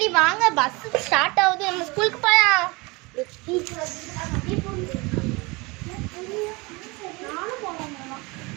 வாங்க, பஸ் ஸ்டார்ட் ஆகுது. நம்ம ஸ்கூலுக்கு போலாம்.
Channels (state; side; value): quieter; left; 25.6 dB